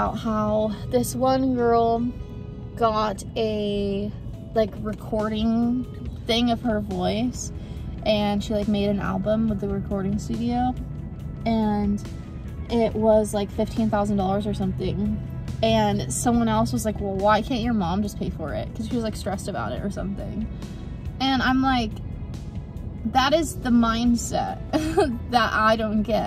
how this one girl got a like recording thing of her voice, and she like made an album with the recording studio, and it was like $15,000 or something. And someone else was like, well, why can't your mom just pay for it? Because she was like stressed about it or something. And I'm like, that is the mindset that I don't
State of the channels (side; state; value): both; identical; correlation 1.00